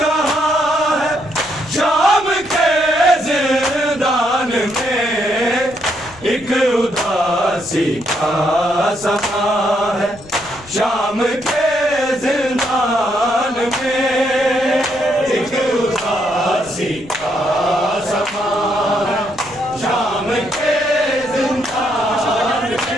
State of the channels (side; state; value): left; noise; rumble, 23 dB below the sound